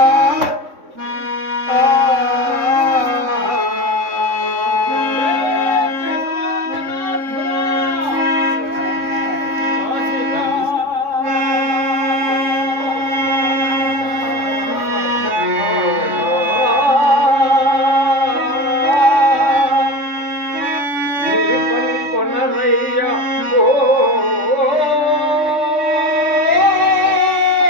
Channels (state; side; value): late; left; 3.6 ms